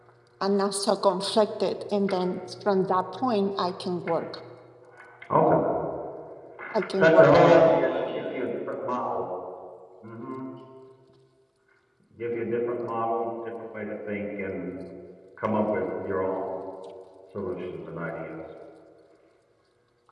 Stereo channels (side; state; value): both; identical; correlation 1.00